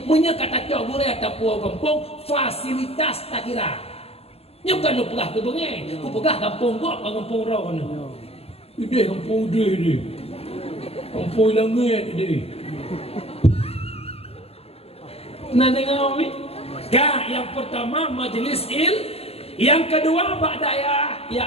punya kata cok boleh ataupun kampung fasilitas tak kira nyukan lu pegah ke bengai ku pegah kampung kau kampung rau ni ide kampung dia kampung langit dia nak dengar ni yang pertama majlis yang kedua bak dayah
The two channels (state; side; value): late; right; 0.29 ms